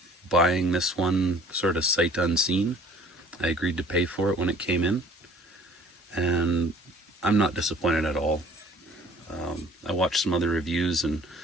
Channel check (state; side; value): normal; both; correlation 0.52